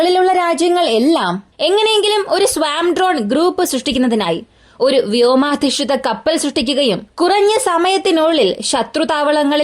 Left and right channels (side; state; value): both; identical; correlation 1.00